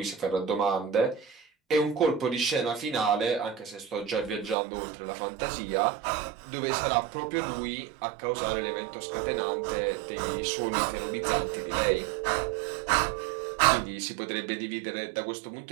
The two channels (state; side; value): drops out; left; at 4.5 s